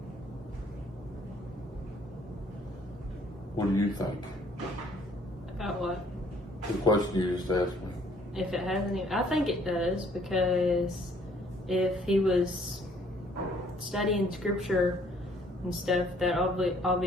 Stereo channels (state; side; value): normal; both; correlation 0.62